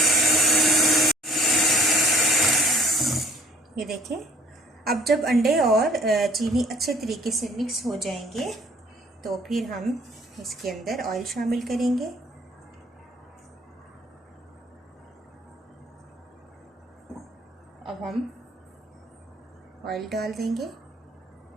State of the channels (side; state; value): both; normal; correlation 0.56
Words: ये देखें, अब जब अंडे और चीनी अच्छे तरीके से मिक्स हो जाएंगे तो फिर हम इसके अंदर ऑयल शामिल करेंगे। अब हम ऑयल डाल देंगे